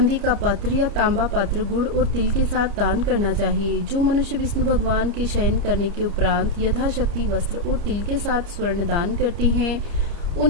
का पात्र या तांबा पात्र गुड़ और तिल के साथ दान करना चाहिए। जो मनुष्य विष्णु भगवान के शयन करने के उपरांत यथाशक्ति वस्त्र और तिल के साथ स्वर्ण दान करते हैं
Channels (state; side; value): late; left; 30 ms